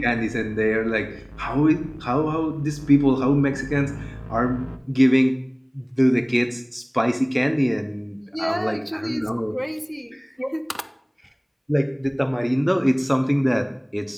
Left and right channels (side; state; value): both; identical; correlation 1.00